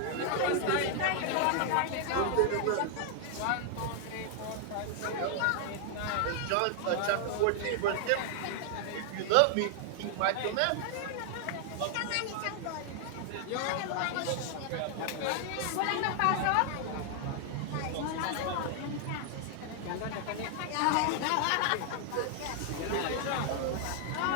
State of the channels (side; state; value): both; different; correlation 0.00